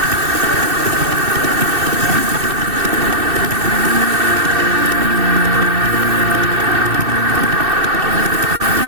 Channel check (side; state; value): left; late; 2.6 ms